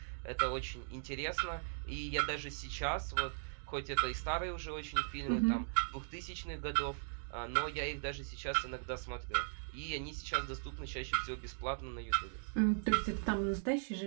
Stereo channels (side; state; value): left; silent; digital silence